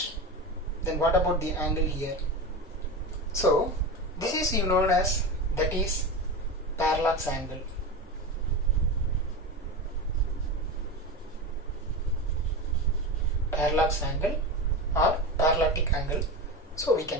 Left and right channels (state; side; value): normal; both; correlation 0.23